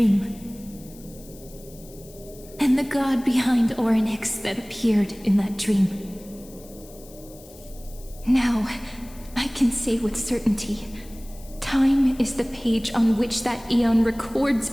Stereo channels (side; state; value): left; noise; hiss, 22 dB below the sound